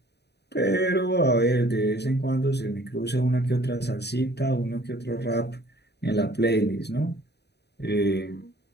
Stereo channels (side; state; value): right; late; 0.48 ms